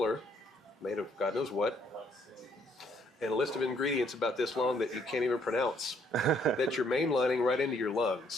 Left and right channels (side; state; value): both; normal; correlation 0.67